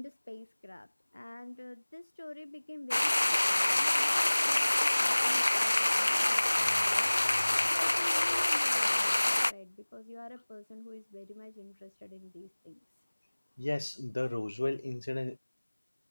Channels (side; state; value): both; inverted; correlation -1.00